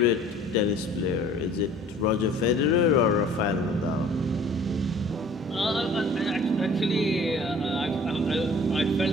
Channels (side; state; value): both; normal; correlation 0.50